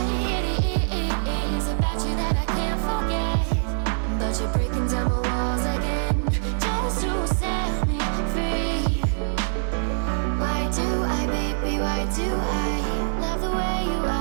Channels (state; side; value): silent; left; 62 dB below the other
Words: it is about you that I can't forget, but you're breaking down my walls again, just to set me free. Why do I, baby, why do I love the way you